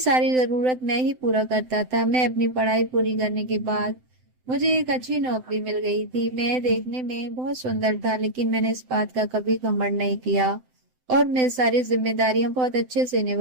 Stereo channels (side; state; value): left; late; 7.8 ms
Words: जरूरत मैं ही पूरा करता था। मैं अपनी पढ़ाई पूरी करने के बाद मुझे एक अच्छी नौकरी मिल गई थी। मैं देखने में बहुत सुंदर था लेकिन मैंने इस बात का कभी घमंड नहीं किया और मैं सारी जिम्मेदारियां बहुत अच्छे से